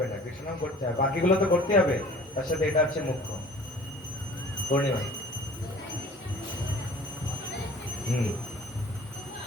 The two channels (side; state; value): both; normal; correlation 0.48